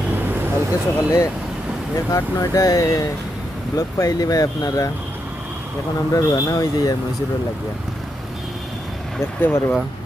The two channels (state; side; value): normal; both; correlation 0.83